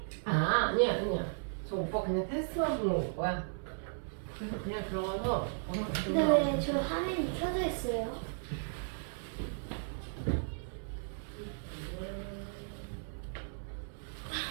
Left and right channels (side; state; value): left; silent; 54 dB below the other